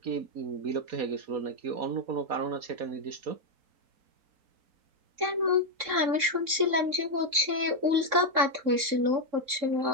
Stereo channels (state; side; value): late; left; 3.6 ms